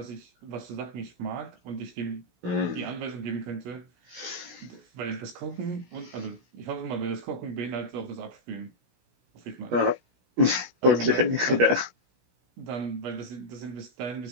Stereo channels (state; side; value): late; left; 16 ms